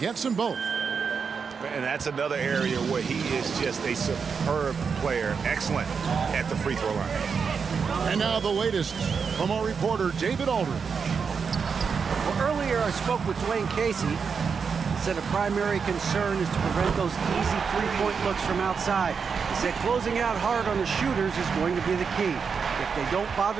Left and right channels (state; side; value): quieter; left; 5.9 dB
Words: them both. And that's another area where he is just a superb player, excellent at the free throw line. And now the latest from our reporter, David Aldridge. Well, earlier I spoke with Dwayne Casey. He said a primary concern is to prevent those easy three-point looks from outside. He said closing out hard on the shooters is going to be the key. If they don't